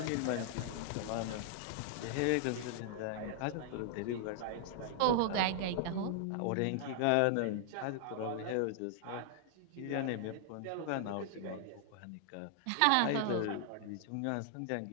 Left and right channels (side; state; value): both; different; correlation 0.00